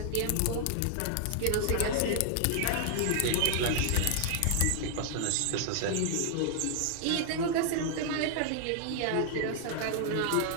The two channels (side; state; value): both; different; correlation 0.00